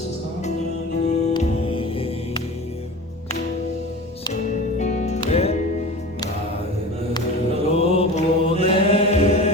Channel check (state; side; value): normal; both; correlation 0.35